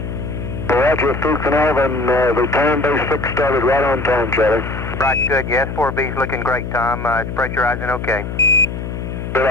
Roger, through Carnarvon, the time base 6 started right on time, Charlie. Right, good, yes, 4B's looking great, Tom. It's pressurizing okay. Good,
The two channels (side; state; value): left; noise; hum, 6 dB below the sound